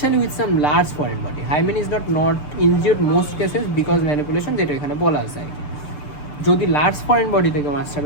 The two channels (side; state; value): right; late; 6.8 ms